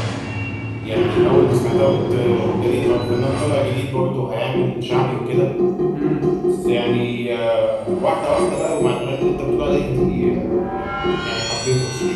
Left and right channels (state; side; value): identical; both; correlation 1.00